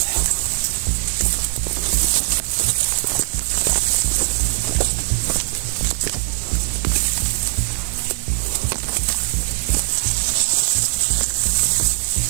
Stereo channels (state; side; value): silent; left; digital silence